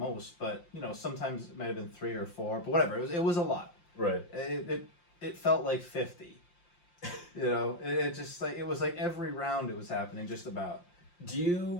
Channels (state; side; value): late; right; 5.7 ms